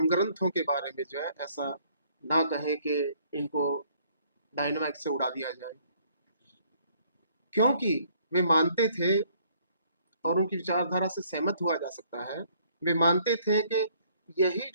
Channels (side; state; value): both; inverted; correlation -0.63